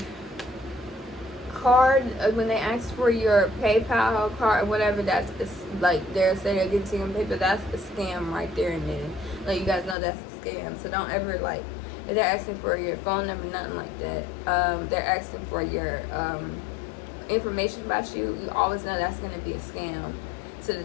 card, when they ask for your PayPal card or whatever, that's like they're saying they're getting to your PayPal, that's a scam right there and then. Like, you guys know that's a scam, so don't ever, like, if they're asking for your phone number, nothing like that. They're asking for your information about you. You always know that's going to be a scam, so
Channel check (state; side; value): drops out; right; at 10.0 s